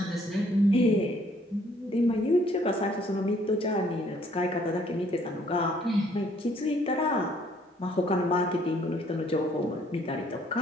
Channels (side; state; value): both; normal; correlation 0.63